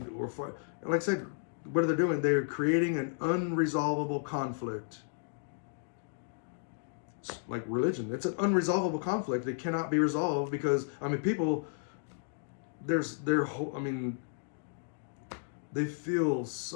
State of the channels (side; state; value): right; silent; digital silence